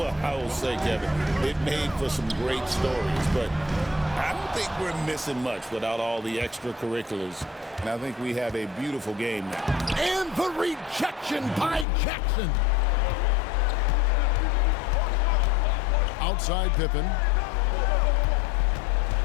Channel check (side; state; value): right; drops out; at 11.9 s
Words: I will say, Kevin, it made for some great stories, but I don't think we're missing much without all the extracurriculars. And I think we have a beautiful game now. And the rejection by Jackson. Outside Pippen.